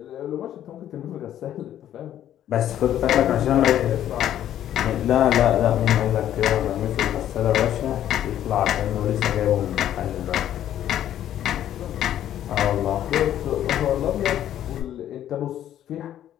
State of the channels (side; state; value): right; quieter; 11.4 dB